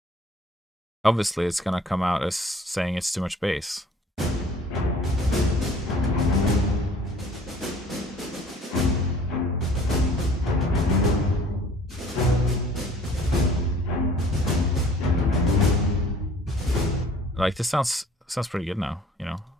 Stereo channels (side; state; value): both; normal; correlation 0.53